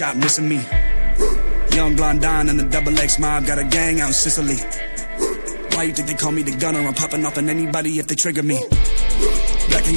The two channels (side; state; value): both; inverted; correlation -1.00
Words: missing me. Young blonde Don and the double X mob got a gang out in Sicily. Why you think they call me the gunner? I'm popping off on anybody if they trigger me. Black